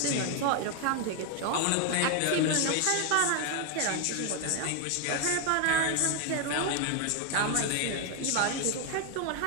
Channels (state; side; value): different; both; correlation 0.01